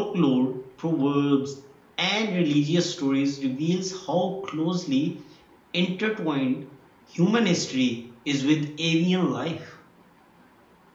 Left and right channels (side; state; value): both; identical; correlation 1.00